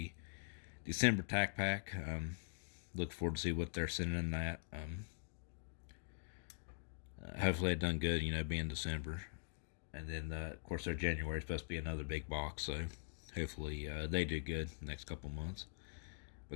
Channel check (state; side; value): silent; right; digital silence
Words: December tack pack. Look forward to see what they're sending in that. Hopefully it done good, being December. And then, of course, their January is supposed to be another big box, so hopefully they do good the next couple months. But